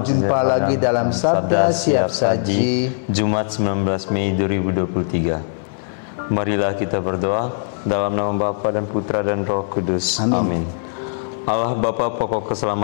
jumpa lagi dalam Sabda Siap Saji, Jumat 19 Mei 2023. Marilah kita berdoa dalam nama Bapa dan Putra dan Roh Kudus. Amin. Allah Bapa pokok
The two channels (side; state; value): right; silent; 66 dB below the other